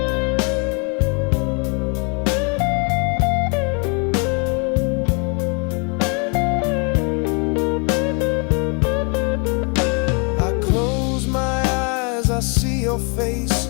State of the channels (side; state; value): right; quieter; 35.4 dB